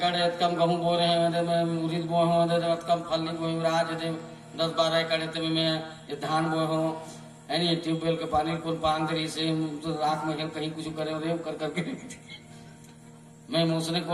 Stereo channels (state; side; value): identical; both; correlation 1.00